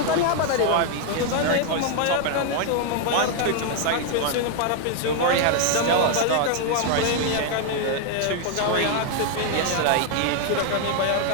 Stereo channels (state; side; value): different; both; correlation 0.00